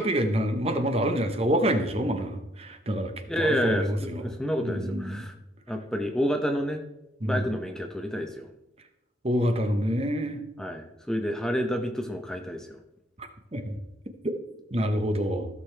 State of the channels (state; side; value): normal; both; correlation 0.72